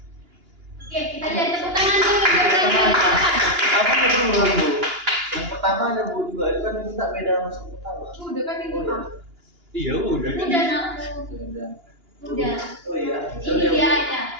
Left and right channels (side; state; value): left; late; 2.9 ms